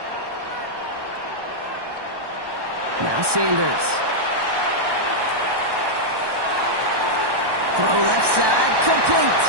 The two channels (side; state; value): left; late; 1.2 ms